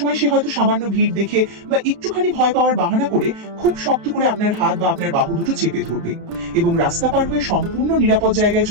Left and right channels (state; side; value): late; left; 32 ms